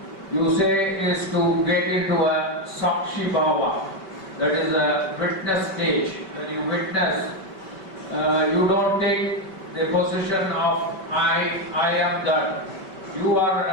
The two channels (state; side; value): late; right; 5.2 ms